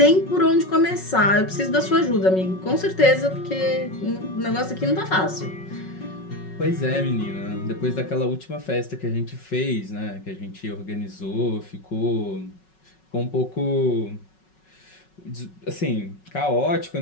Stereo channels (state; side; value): late; right; 5.4 ms